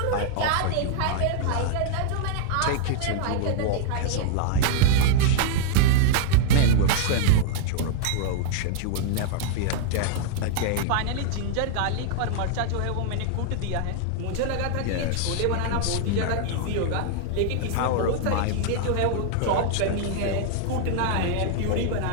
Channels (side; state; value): both; different; correlation -0.01